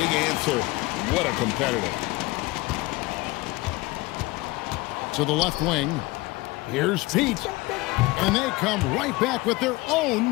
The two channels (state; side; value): quieter; right; 21.7 dB